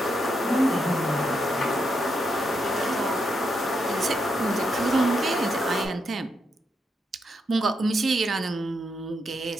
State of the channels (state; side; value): normal; both; correlation 0.81